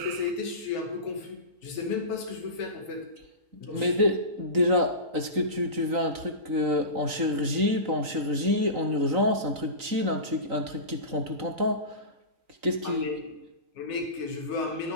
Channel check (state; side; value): late; left; 3.9 ms